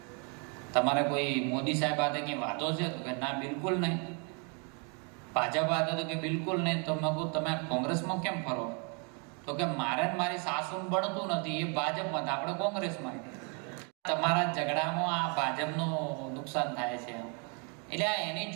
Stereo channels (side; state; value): left; quieter; 36.3 dB